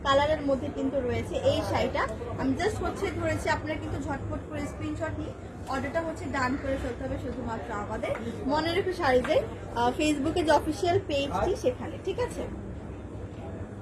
কালারের মধ্যে কিন্তু রয়েছে এই শাড়িটা। আমি জাস্ট হচ্ছে ধরেছি, আপনারা কিন্তু ঝটপট করে স্ক্রিনশট নিয়ে অর্ডারটা হচ্ছে ডান করে ফেলতে হবে শুধুমাত্র আমাদের মনে রেখে শাড়িতে ফেসবুকে যে অফিসিয়াল পেজটি সেখানে। ঠিক আছে,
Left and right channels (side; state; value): both; identical; correlation 1.00